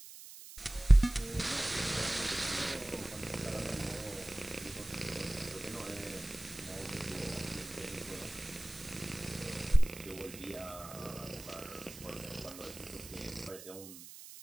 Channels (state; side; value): noise; right; hiss, 15 dB below the sound